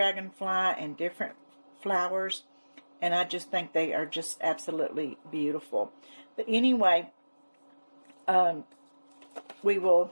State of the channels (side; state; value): both; inverted; correlation -1.00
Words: and different flowers, and I just think they are just absolutely beautiful. But anyway, I do